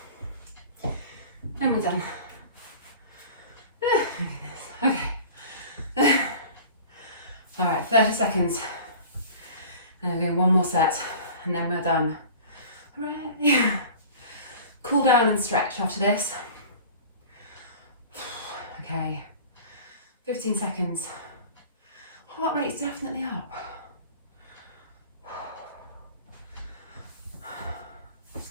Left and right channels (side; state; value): both; inverted; correlation -0.41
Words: And we're done. Okay. All right, 30 seconds. And we're doing one more set, and then we're done. Hooray. Cool down and stretch after this. Okay, 15 seconds. Heart rate's definitely up.